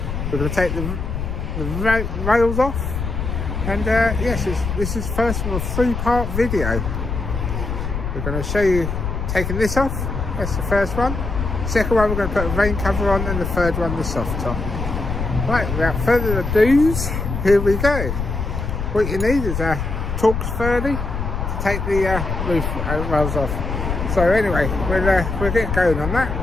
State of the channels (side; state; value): left; noise; rumble, 3 dB below the sound